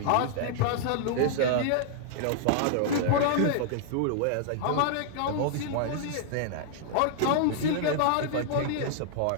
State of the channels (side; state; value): both; different; correlation -0.01